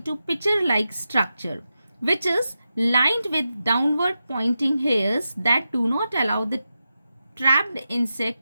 pitcher-like structure, which is lined with downward pointing hairs that do not allow the trapped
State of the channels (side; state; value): both; inverted; correlation -0.90